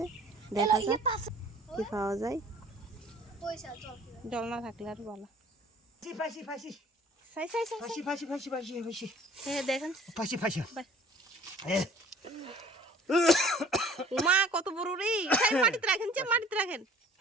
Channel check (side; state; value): both; normal; correlation 0.51